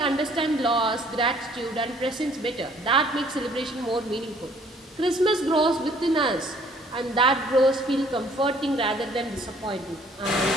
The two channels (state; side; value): normal; both; correlation 0.59